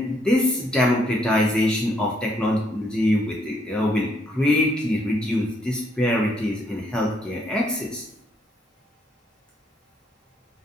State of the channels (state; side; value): normal; both; correlation 0.71